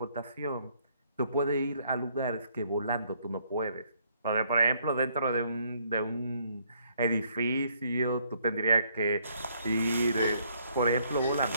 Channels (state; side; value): inverted; both; correlation -0.67